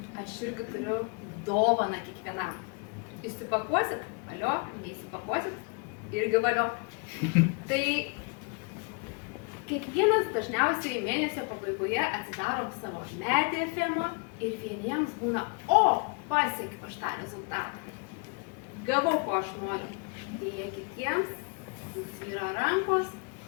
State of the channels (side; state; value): right; quieter; 33.3 dB